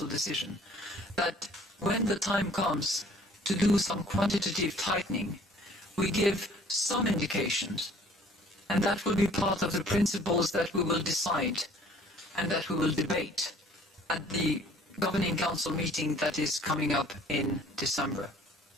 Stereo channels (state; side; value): normal; both; correlation 0.54